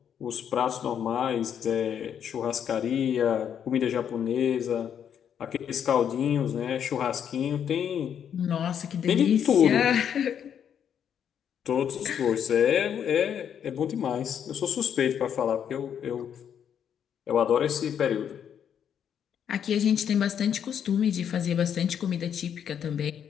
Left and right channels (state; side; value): quieter; right; 8.6 dB